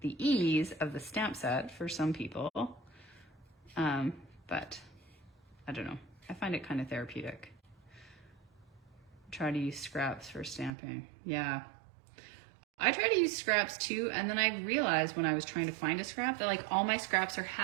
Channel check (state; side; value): drops out; left; at 10.7 s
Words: the ease of the stamp set for some people. But I don't know. I find it kind of therapeutic. Try to use scraps for stamping. Yeah. I try to use scraps too, and then I realized when I was trying to find a scrap that like all my scraps are